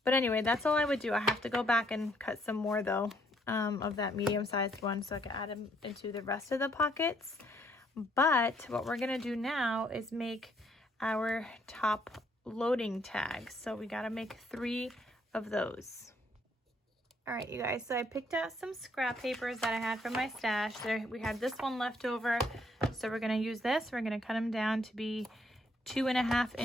But anyway, that's all I would do. I have to go back and cut some more though, of that medium-sized one so I can add them into the rest of the pockets. But what we're gonna do now is make our top loading tags. So we gotta make 3 of those. All right, you guys, so I picked out some scrap papers that I had from my stash. There, we had this one left over, so we're gonna use this. We're gonna cut them down to be 2.5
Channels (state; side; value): normal; both; correlation 0.69